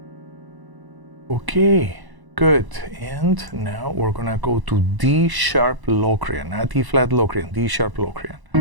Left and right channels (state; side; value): late; left; 1.0 ms